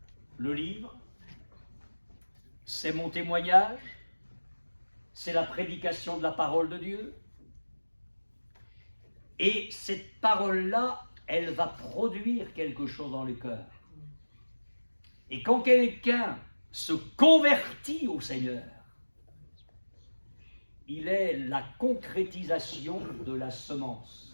le livre, c'est mon témoignage, c'est la prédication de la parole de Dieu. Et cette parole-là, elle va produire quelque chose dans le cœur. Et quand quelqu'un se convertit au Seigneur, il est la concrétisation de la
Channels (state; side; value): inverted; both; correlation -1.00